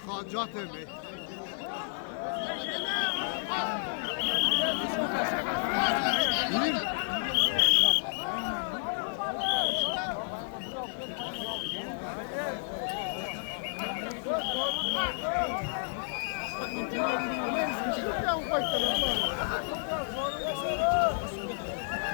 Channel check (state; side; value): silent; right; 57 dB below the other